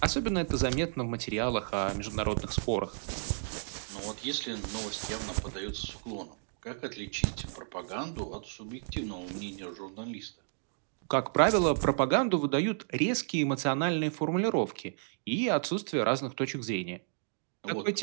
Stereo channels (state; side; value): silent; left; digital silence